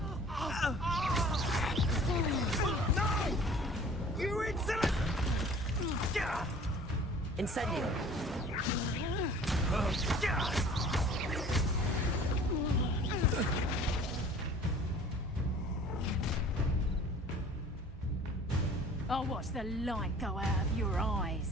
No! You insolent! Incendio! I'll watch the light go out of your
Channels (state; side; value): normal; both; correlation 0.48